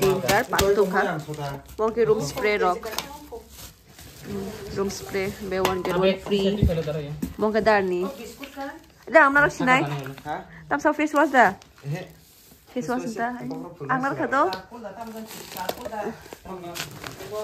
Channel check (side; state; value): both; identical; correlation 1.00